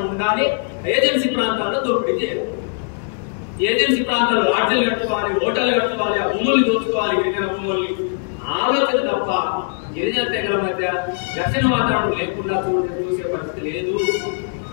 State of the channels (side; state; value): right; silent; digital silence